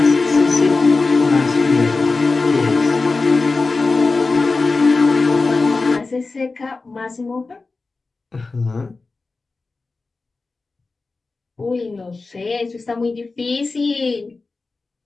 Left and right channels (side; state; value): right; quieter; 3.8 dB